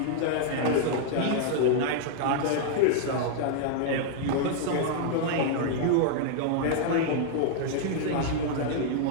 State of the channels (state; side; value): different; both; correlation -0.01